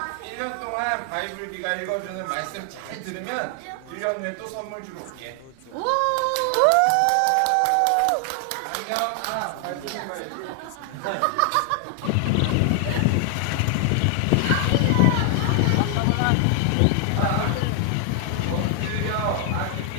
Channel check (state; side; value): different; both; correlation 0.00